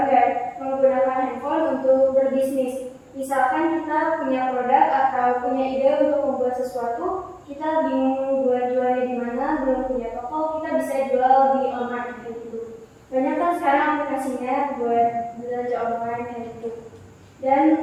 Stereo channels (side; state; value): both; identical; correlation 1.00